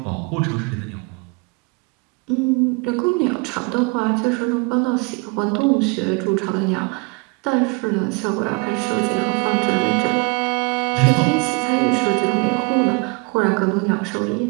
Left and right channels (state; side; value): quieter; left; 30.6 dB